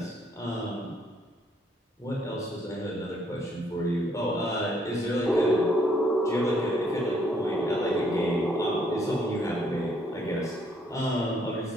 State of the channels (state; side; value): normal; both; correlation 0.68